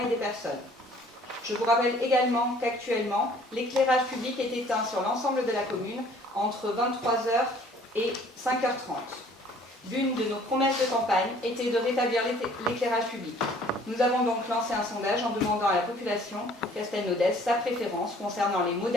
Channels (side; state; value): both; normal; correlation 0.55